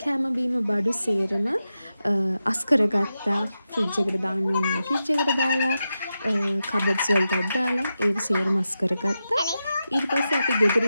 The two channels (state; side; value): inverted; both; correlation -0.90